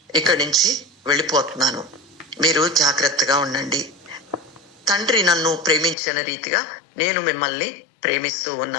ఇక్కడి నుంచి వెళ్ళిపోతున్నాను, మీరు జాగ్రత్తగా ఉండండి. తండ్రి నన్ను ప్రేమించిన రీతిగా నేను మిమ్మల్ని ప్రేమిస్తూ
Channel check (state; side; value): drops out; right; at 6.0 s